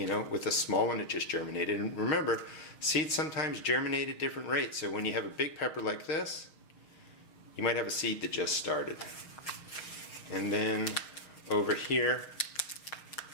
with a small one that just germinated. And remember, seeds sometimes germinate at different rates. So when you have a big pepper like this, you might have a seed that just started. And then over here,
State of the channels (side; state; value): right; late; 6.4 ms